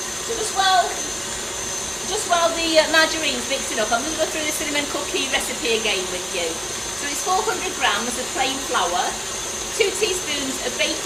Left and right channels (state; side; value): identical; both; correlation 1.00